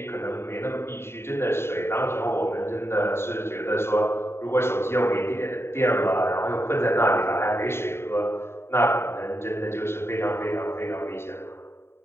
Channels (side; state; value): right; late; 0.12 ms